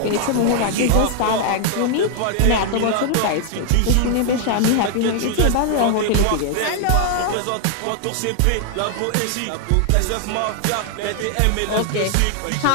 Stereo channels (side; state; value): both; different; correlation 0.00